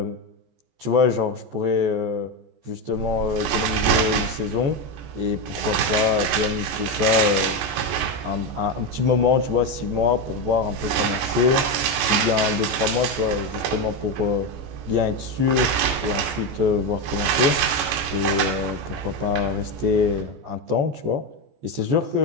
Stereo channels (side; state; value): left; late; 14 ms